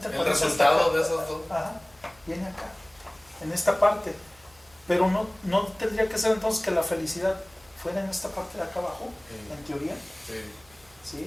El resultado de esos dos. Ajá, viene acá, en esta parte. Pero no tendría que ser entonces que la felicidad fuera en esta parte de acá abajo, sí, en teoría. Sí.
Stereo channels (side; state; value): right; noise; hum, 29 dB below the sound